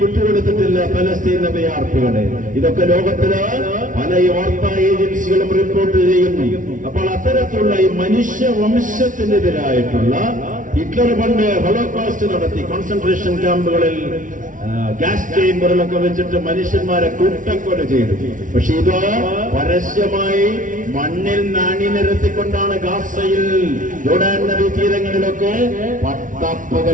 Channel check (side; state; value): left; late; 0.38 ms